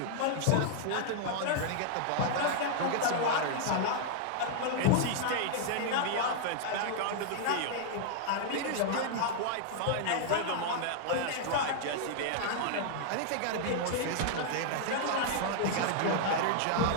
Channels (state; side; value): different; both; correlation -0.01